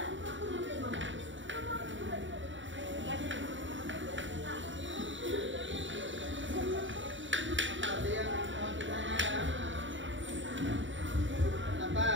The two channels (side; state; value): left; late; 0.55 ms